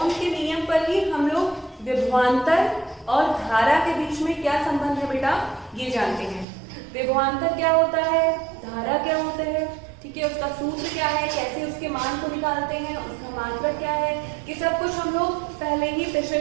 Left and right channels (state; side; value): drops out; left; at 6.5 s